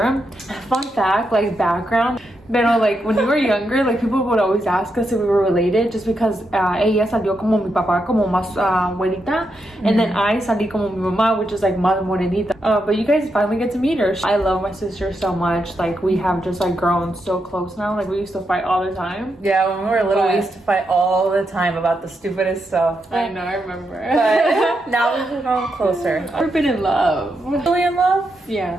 Fun fact, like background, pero like when we were younger, like people would always ask us if we were related just because ella salió como mi papá, como más güerita, and then I salí como mi mamá, which is like más morenita. But you guys finally get to meet her. I love my sister so much. Like we have just like grown so close now. Like we used to fight all the time. Yeah, when we were little, we used to fight all the time about the stupidest stuff. I know, I remember. But now we've grown closer. I've been in love. Really in love?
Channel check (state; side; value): normal; both; correlation 0.83